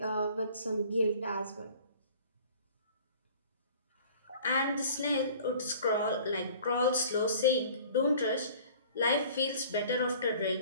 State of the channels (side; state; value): both; inverted; correlation -0.49